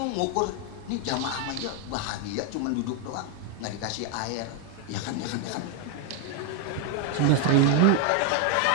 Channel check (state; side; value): different; both; correlation 0.01